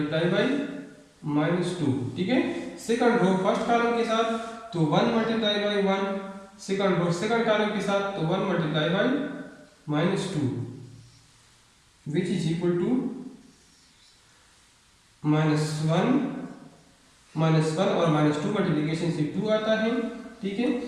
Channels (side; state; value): both; identical; correlation 1.00